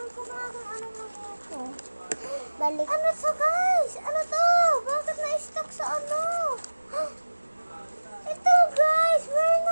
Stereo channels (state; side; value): inverted; both; correlation -1.00